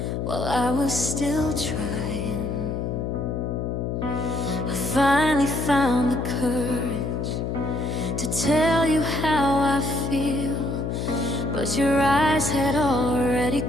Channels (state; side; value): noise; left; hum, 2 dB below the sound